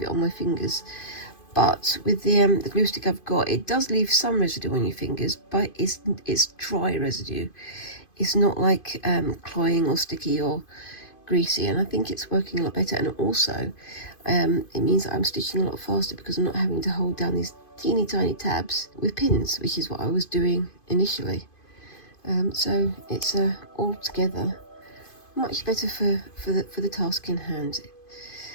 it on my fingers. But with the glue stick I've got, it does leave some residue on your fingers, but it's dry residue. It's not like cloying or sticky or greasy, and I think it's working a lot better. And also, it means that I'm stitching a lot faster because I'm not having to hold down these teeny tiny tabs with pins, which is what I was doing initially. So it's altogether much better for the task in hand.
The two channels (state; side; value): late; right; 2.5 ms